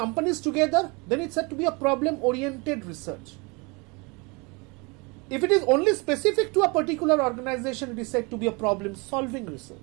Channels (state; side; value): quieter; left; 28.8 dB